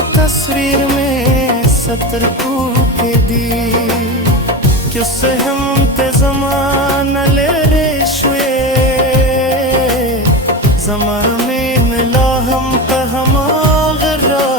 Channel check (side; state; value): both; normal; correlation 0.22